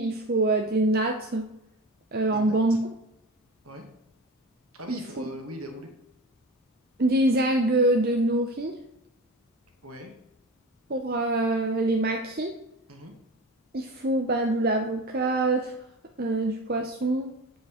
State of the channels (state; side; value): normal; both; correlation 0.32